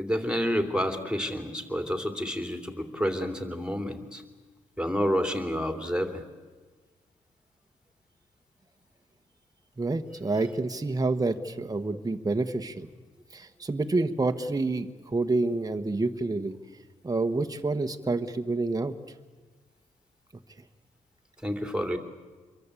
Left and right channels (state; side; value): normal; both; correlation 0.86